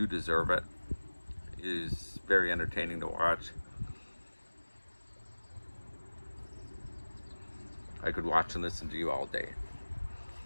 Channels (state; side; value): inverted; both; correlation -1.00